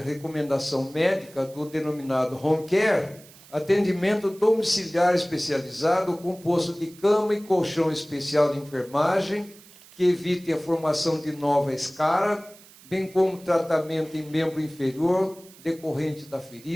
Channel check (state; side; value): noise; right; hiss, 23 dB below the sound